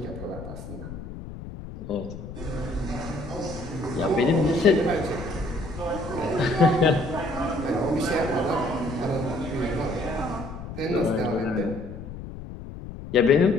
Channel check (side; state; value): left; noise; rumble, 11 dB below the sound